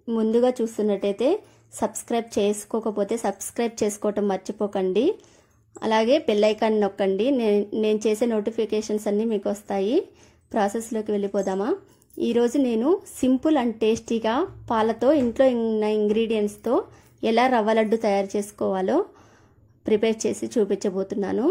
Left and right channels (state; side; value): identical; both; correlation 1.00